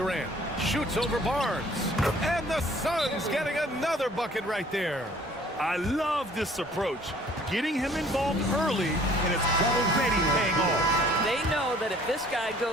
Shoots over Barnes. And the Suns getting another bucket right there. I love this approach. Getting him involved early, and it's already paying off. They know that if this guy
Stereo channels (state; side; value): normal; both; correlation 0.55